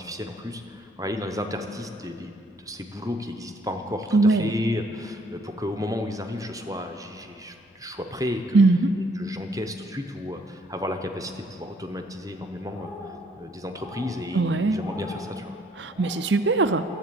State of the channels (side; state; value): both; normal; correlation 0.65